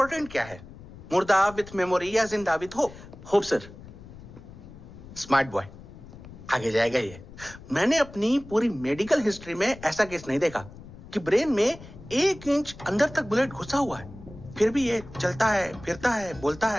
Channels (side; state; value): left; noise; rumble, 17 dB below the sound